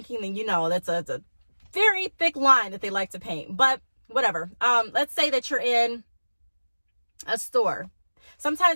then that's a very thick line that they like to paint. But whatever. Let's say that you're in a store.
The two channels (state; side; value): inverted; both; correlation -1.00